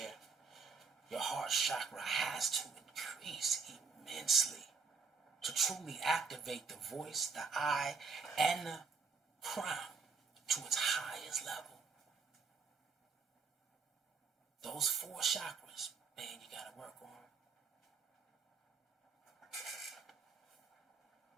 your heart chakra has to increase immensely to truly activate the voice, the eye, and the crown to its highest level. Those 4 chakras, man, you got to work on.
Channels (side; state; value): left; quieter; 5.2 dB